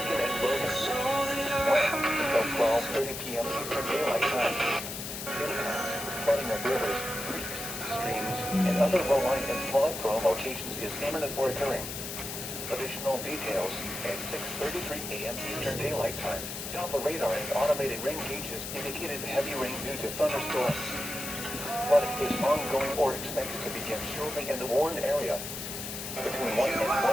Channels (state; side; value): noise; left; hiss, 7 dB below the sound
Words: and Logan. When? Until 12:30 p.m. Eastern Daylight Time. Impacts: flooding of rivers, creeks, streams, and other low-lying and flood-prone locations is imminent or occurring. Additional details at 6:33 a.m. Eastern Daylight Time. Doppler radar and automated rain gauges indicated heavy rain due to thunderstorms. Flooding is ongoing or expected to begin shortly in the Warren area. Between 1 and